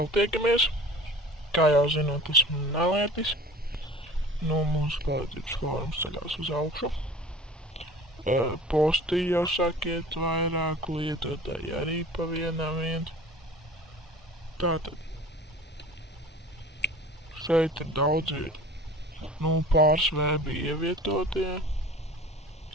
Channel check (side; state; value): both; normal; correlation 0.42